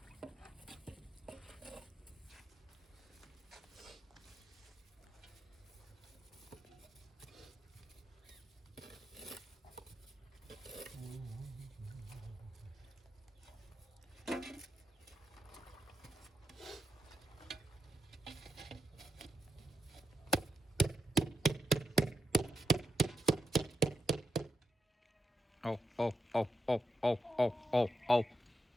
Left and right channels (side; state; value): both; normal; correlation 0.85